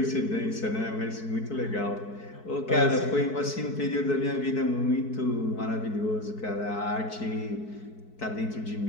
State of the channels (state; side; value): late; right; 4.6 ms